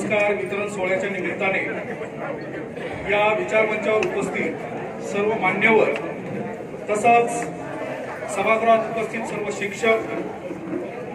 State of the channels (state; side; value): identical; both; correlation 1.00